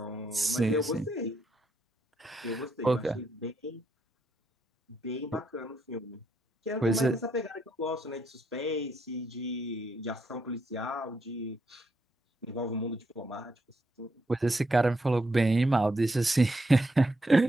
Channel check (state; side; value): normal; both; correlation 0.78